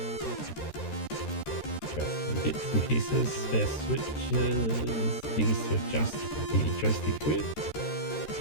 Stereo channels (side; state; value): right; late; 13 ms